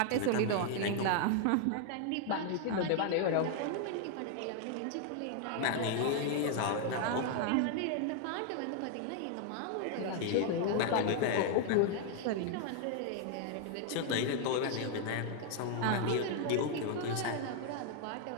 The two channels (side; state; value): both; different; correlation 0.00